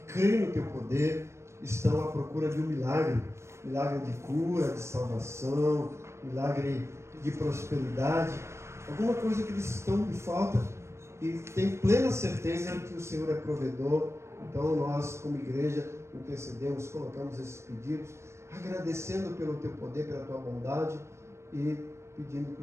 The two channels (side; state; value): left; late; 0.13 ms